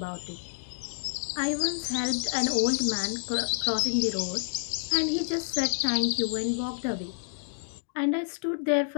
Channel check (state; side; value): silent; right; digital silence